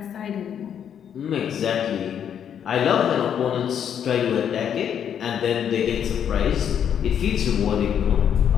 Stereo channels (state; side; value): quieter; right; 8.7 dB